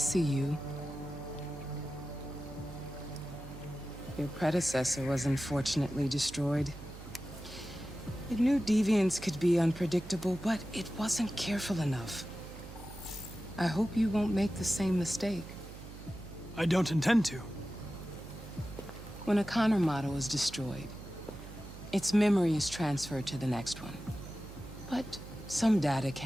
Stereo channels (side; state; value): right; noise; hum, 14 dB below the sound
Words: you. Your predecessor was unfortunately destroyed. It knew deviants could be unpredictable, but it wasn't careful enough. I hope you won't make the same mistake. I don't intend to. When a Connor model is destroyed, its memory is transferred to the next one. But some data